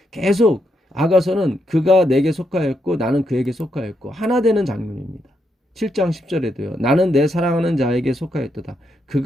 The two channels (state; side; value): normal; both; correlation 0.80